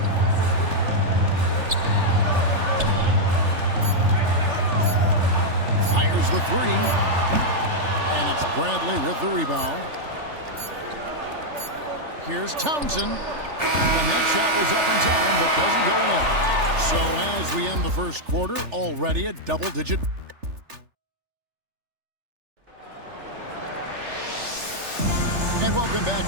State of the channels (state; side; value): late; left; 3.4 ms